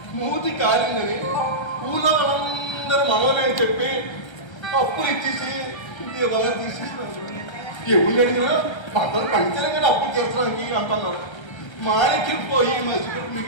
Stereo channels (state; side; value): late; right; 1.3 ms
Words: మూతి కాలిందని ఊళ్ళో వాళ్ళందరూ మనోనే చెప్పి అప్పులు ఇచ్చేసి దీపాలు తీసేసినారు. ఎవరు అడిగినా అందరూ పంచాలి కదా అప్పులు తీర్చడానికి అంటున్నారు. మాణిక్యం పోయి మసిపెట్టి